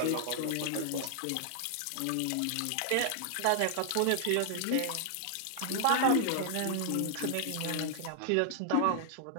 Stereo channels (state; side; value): different; both; correlation -0.01